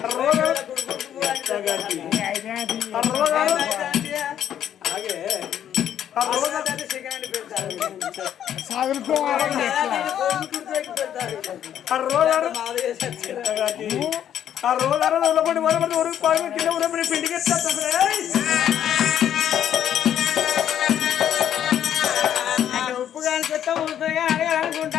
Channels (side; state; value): right; quieter; 10.2 dB